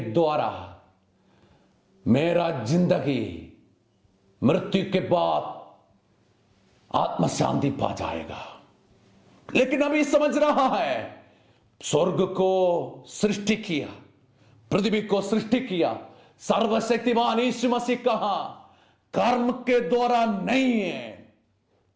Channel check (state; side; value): identical; both; correlation 1.00